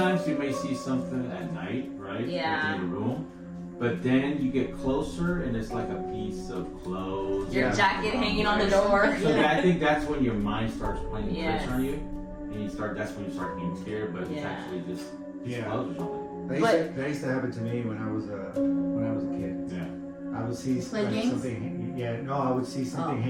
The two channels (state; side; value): identical; both; correlation 1.00